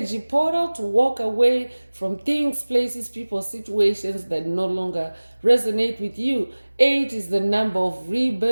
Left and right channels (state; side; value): inverted; both; correlation -1.00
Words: portal to walk away from things, places, people, situations that no longer resonate with you. 8 is the number of